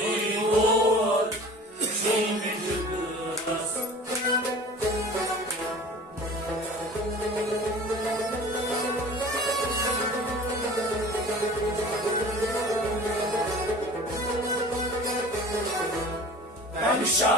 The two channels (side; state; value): both; normal; correlation 0.42